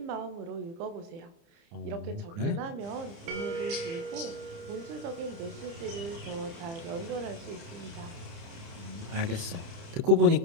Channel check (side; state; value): left; late; 30 ms